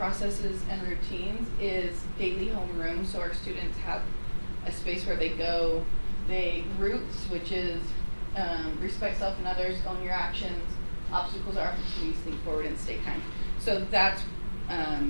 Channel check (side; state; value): both; inverted; correlation -1.00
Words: and routines is daily homeroom. So our students have a space where they go. Roots, which is respect self and others, own your actions, obstacles are opportunities, think forward and stay kind. So that's